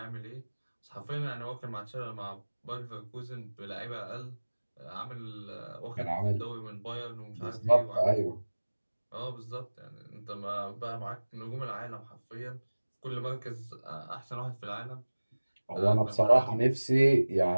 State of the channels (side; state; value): both; inverted; correlation -1.00